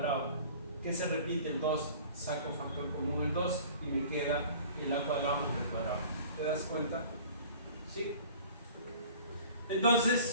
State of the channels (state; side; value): inverted; both; correlation -0.46